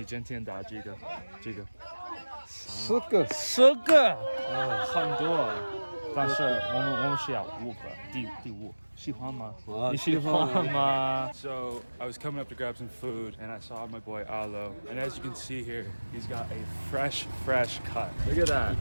今天打几个？10个，10个，很多。但是我们需要5个，第5。喜欢吗？你喜欢吗？ So I was coming up to grab some food and I saw my boy Alo, and as you can see here, he's got a fresh cut. Look at that.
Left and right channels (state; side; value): inverted; both; correlation -1.00